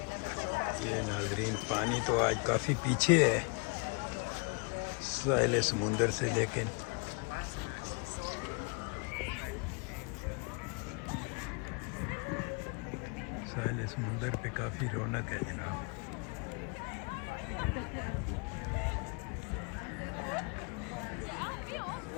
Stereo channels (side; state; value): right; quieter; 32.9 dB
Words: ये नाजरीन, पानी तो आज काफ़ी पीछे है साहिल समुंदर से, लेकिन साहिल समुंदर पे काफ़ी रौनक है जनाब।